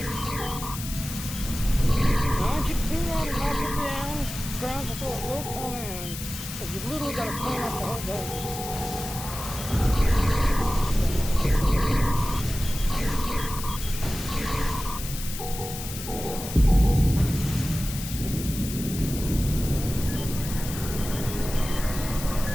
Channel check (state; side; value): noise; left; hiss, 9 dB below the sound